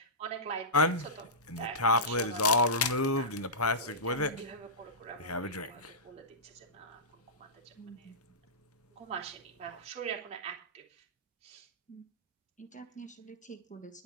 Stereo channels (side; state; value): both; normal; correlation -0.17